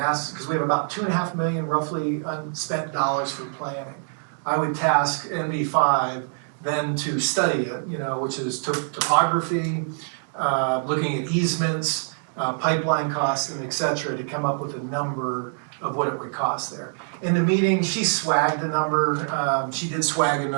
because we have about 2.5 million roughly unspent dollars for planning. I would task NV5 then to study it, you know, which is topography, looking at easements, pipeline costs, and et cetera, to come up with a number of what it would cost there. In the meeting, she swagged a number, she did swag a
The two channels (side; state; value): left; silent; digital silence